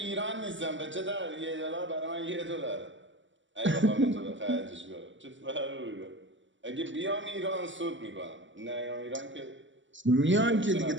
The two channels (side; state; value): left; late; 0.55 ms